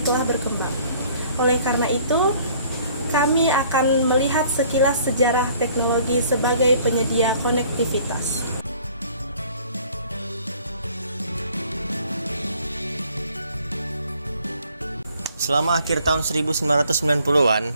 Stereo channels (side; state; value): both; inverted; correlation -0.57